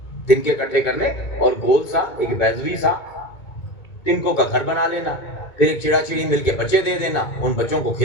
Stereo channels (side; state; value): right; late; 2.2 ms